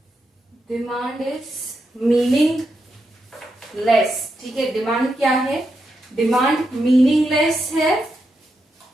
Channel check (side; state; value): both; normal; correlation 0.84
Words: demand is meaningless. ठीक है, डिमांड क्या है? डिमांड मीनिंगलेस है